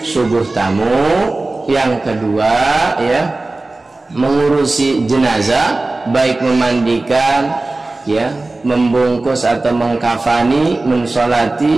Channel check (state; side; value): quieter; left; 3.1 dB